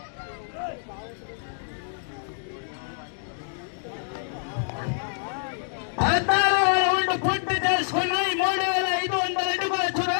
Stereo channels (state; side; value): silent; right; digital silence